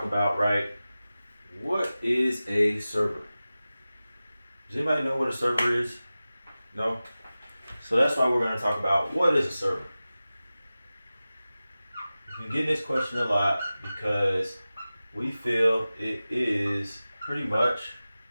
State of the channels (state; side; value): inverted; both; correlation -0.96